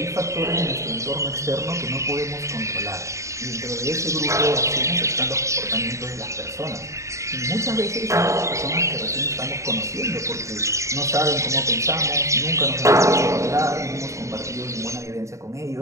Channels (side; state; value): left; late; 0.14 ms